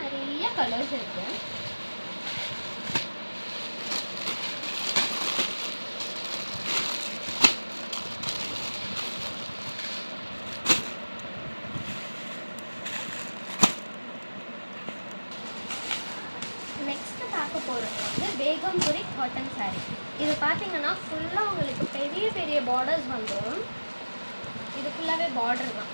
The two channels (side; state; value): both; inverted; correlation -1.00